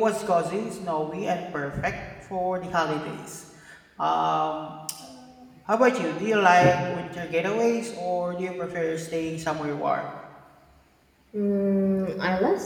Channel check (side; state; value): both; identical; correlation 1.00